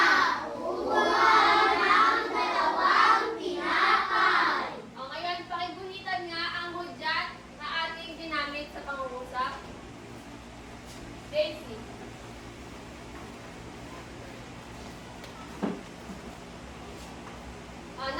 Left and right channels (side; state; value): both; identical; correlation 1.00